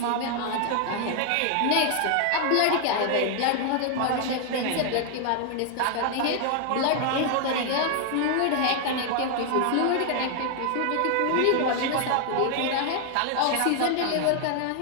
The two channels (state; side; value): different; both; correlation 0.00